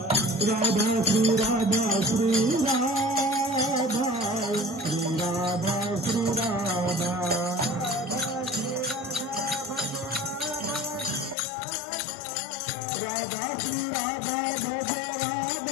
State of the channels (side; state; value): right; drops out; at 11.4 s